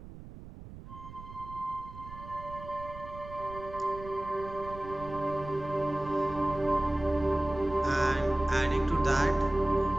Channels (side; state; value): right; noise; rumble, 14 dB below the sound